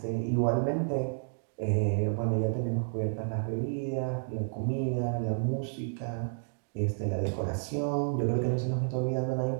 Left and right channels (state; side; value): silent; left; digital silence